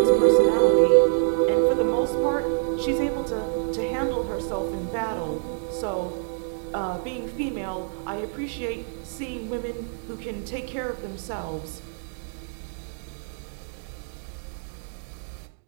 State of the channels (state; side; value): silent; left; digital silence